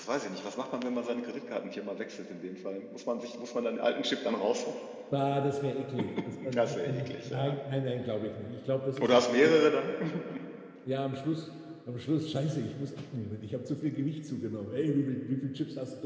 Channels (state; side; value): identical; both; correlation 1.00